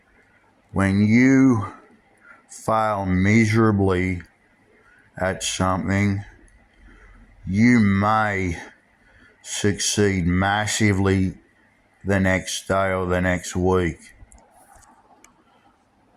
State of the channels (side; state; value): both; identical; correlation 1.00